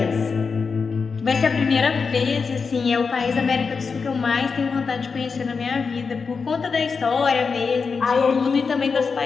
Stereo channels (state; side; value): quieter; right; 5.1 dB